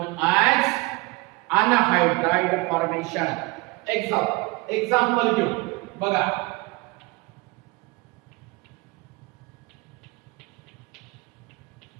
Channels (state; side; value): quieter; left; 24.3 dB